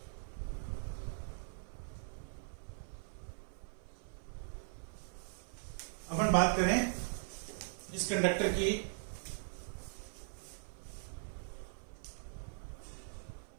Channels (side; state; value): left; silent; 51 dB below the other